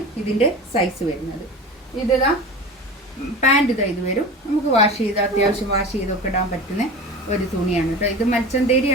ഇതിൻ്റെ സൈസ് വരുന്നത്. ഇതാ പാൻറ് ഇതാ ഇത് വരും. നമുക്ക് വാഷ് ചെയ്ത് അത്യാവശ്യം വാഷ് ചെയ്തൊക്കെ ഇടാൻ പറ്റുന്ന ഒരു തുണിയാണ് കേട്ടോ. ഇത്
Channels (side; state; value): both; normal; correlation 0.32